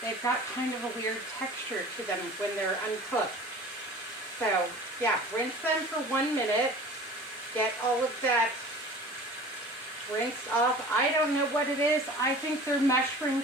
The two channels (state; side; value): normal; both; correlation 0.42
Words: kind of a weird texture to them when they're uncooked. So yeah, rinse them for 1 minute. Get all of that rinsed off. I don't know what it is. I think they're mushroom